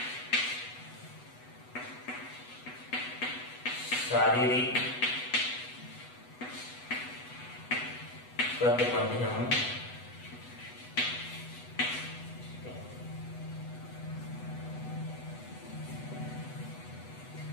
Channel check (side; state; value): right; late; 8.1 ms